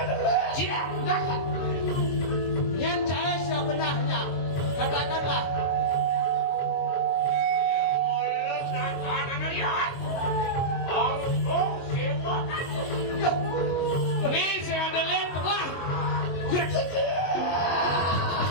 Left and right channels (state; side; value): late; right; 22 ms